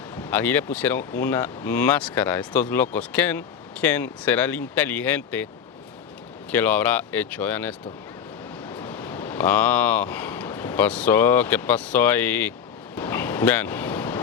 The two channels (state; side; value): quieter; right; 7.8 dB